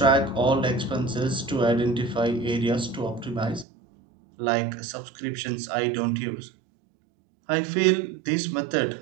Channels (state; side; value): drops out; left; at 3.7 s